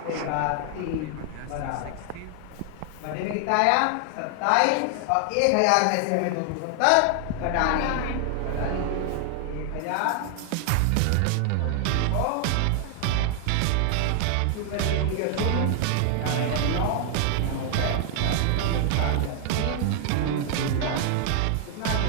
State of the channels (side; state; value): both; different; correlation 0.00